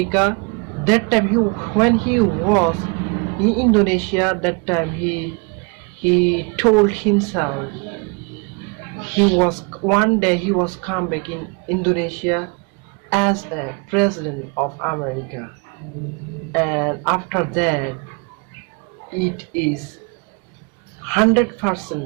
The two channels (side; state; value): left; quieter; 33.2 dB